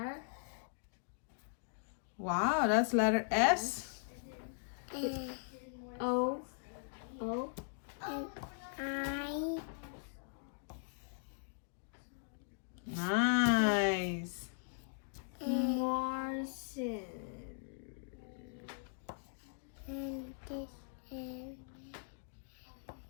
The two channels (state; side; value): silent; right; digital silence